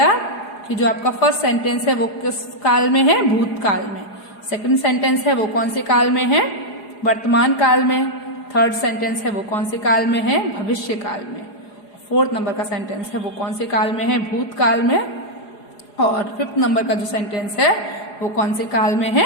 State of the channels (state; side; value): late; right; 4.8 ms